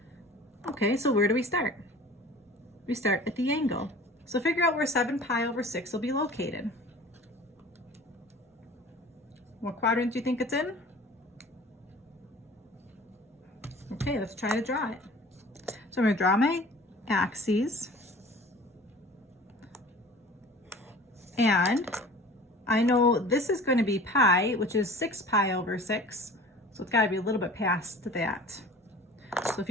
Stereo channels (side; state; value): both; normal; correlation 0.43